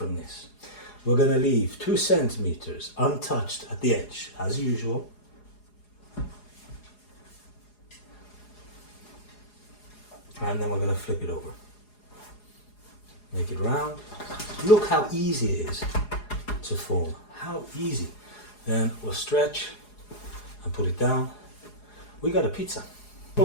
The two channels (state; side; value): late; right; 4.8 ms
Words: this. We're going to leave 2 centimeters untouched at the edge, as usual. And then we're going to flip it over. Make it round. Look how easy it is to form. How easy. Then we'll stretch and put it down. We got a pizza.